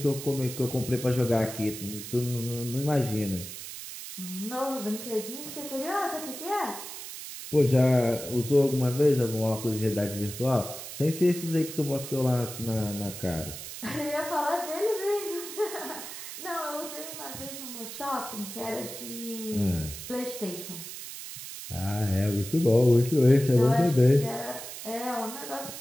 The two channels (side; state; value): right; noise; hiss, 10 dB below the sound